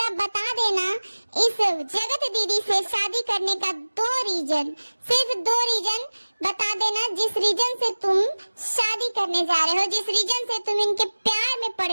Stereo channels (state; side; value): inverted; both; correlation -1.00